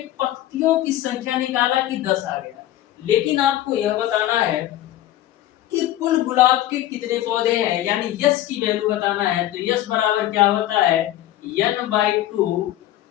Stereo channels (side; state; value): right; quieter; 13.7 dB